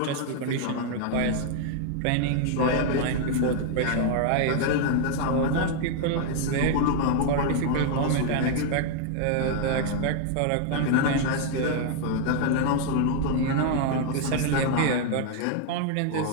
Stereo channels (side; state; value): both; different; correlation 0.00